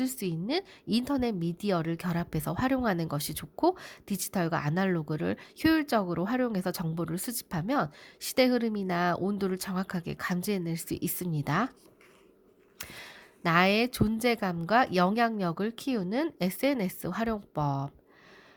수 있는 인터넷 미디어를 결합해서 활용하는 것이 좋고, 디지털과 아날로그를 효율적으로 활용해서 정보를 수집하면 시대 흐름이나 온도를 정확하게 감지해낼 수 있습니다. 나의 존재감과 영향력을 키우는 SNS 활용법.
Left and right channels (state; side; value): identical; both; correlation 1.00